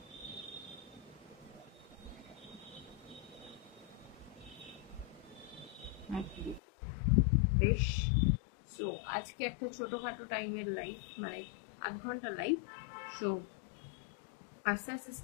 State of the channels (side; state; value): right; drops out; at 6.6 s